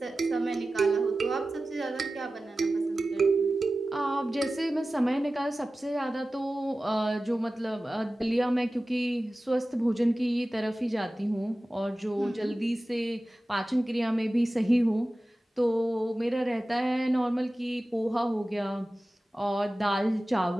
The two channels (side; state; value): both; normal; correlation 0.96